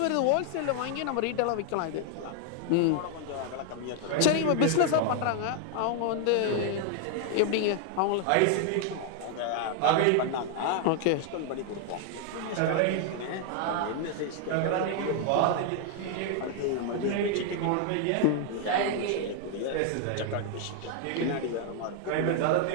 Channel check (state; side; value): different; both; correlation 0.00